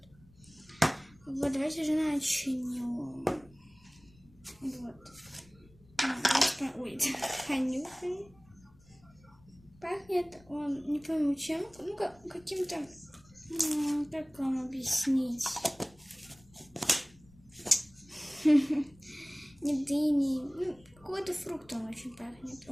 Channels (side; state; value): left; noise; rumble, 27 dB below the sound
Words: Вот, давайте же начнем. Вот. Ой, понюхаем. Пахнет он, не пойму чем, ну каким-то, как вам объяснить, не дыней, какой-то фрукт он очень пахнет.